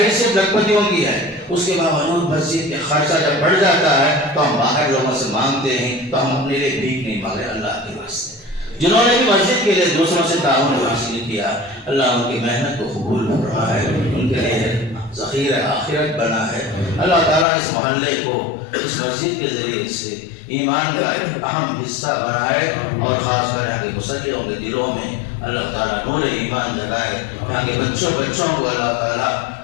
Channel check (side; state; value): right; drops out; at 17.4 s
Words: لکھپتیوں کی ہے، اس کے باوجود مسجد کے خرچہ جب بڑھ جاتا ہے تو ہم باہر لوگوں سے مانگتے ہیں، تو ہم اپنے لیے بھیک نہیں مانگے اللہ کے واسطے۔ جنہوں نے بھی مسجد کے لیے دوسروں سے تعاون حاصل کیا، اللہ ان کی محنت کو قبول فرمائے، ان کے لیے ذخیرہ آخرت بنا ہے۔ اللہ تعالیٰ اس محلے کو اس مسجد کے ذریعے سے ایمان کا ایک اہم حصہ بنائے، اور خاص کر یہاں کے مسلمانوں کے دلوں میں اللہ تعالیٰ نور ایمان جگائے، یہاں کے بچوں کو اللہ تعالیٰ